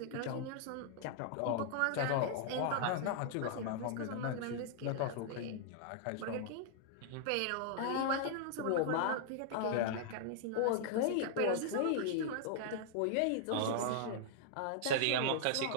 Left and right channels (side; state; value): both; different; correlation -0.01